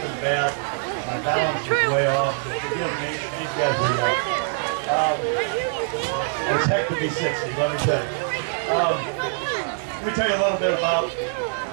bad. My balance is way off, so forgive me. These guys are young. It's heck to be 60, let me tell you. Let me tell you a little bit about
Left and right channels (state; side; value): silent; left; digital silence